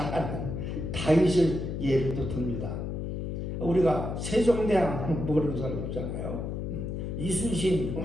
다윗을 예를 또 듭니다. 우리가 세종대왕 모르는 사람 없잖아요. 이순신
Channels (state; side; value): noise; left; hum, 4 dB below the sound